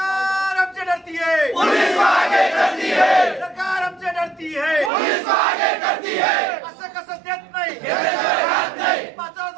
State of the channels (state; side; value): drops out; left; at 4.9 s